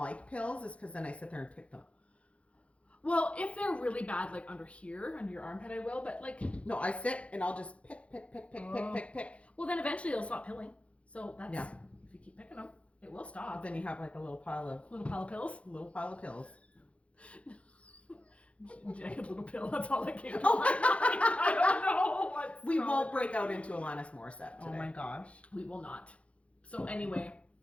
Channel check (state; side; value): late; right; 0.062 ms